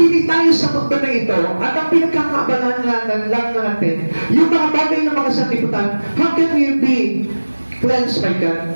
tayo sa mundo na ito, at ang pinagkakabalan lang natin, yung mga bagay na mga sanlibutan, how can we be cleansed by God?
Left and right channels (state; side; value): inverted; both; correlation -1.00